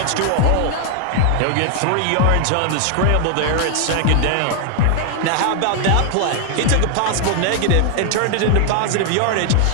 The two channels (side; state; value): both; different; correlation 0.00